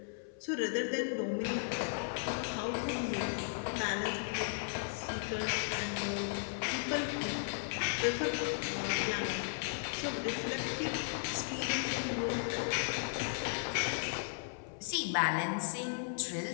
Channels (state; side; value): silent; right; 54 dB below the other